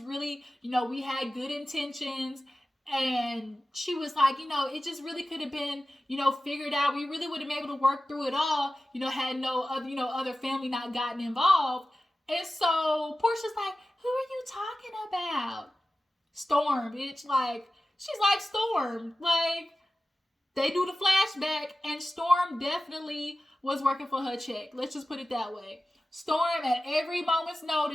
really, we had good intentions. And she was like, it just really could have been, figured out. We really would have been able to work through it all, had no other, other family not gotten involved. And so Portia's like, who are you talking about? Storm, bitch. Like, she's like Storm. Like, they do the flashback, and Storm definitely was working for her check. Let's just put it that way. Storm, at every moment's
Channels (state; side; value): normal; both; correlation 0.95